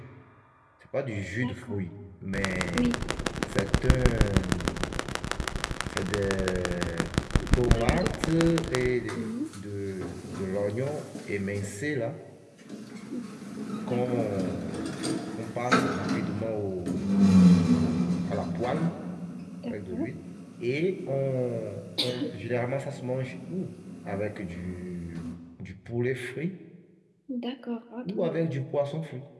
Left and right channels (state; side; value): identical; both; correlation 1.00